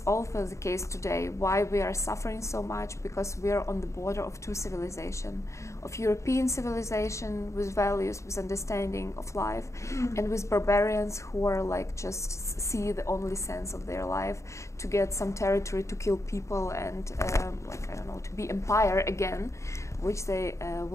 also the case today. Why we are suffering so much? Because we are on the border of two civilizations, of European civilization with values, with understanding of life, and with barbarians who are like just see the only sense of their life to get some territory, to kill people, and like I don't know, to be empire again, which they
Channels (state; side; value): late; right; 0.14 ms